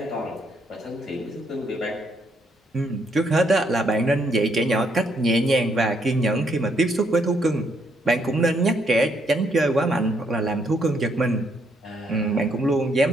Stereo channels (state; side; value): normal; both; correlation 0.73